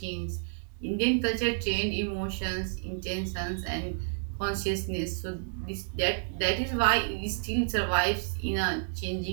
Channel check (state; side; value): silent; left; digital silence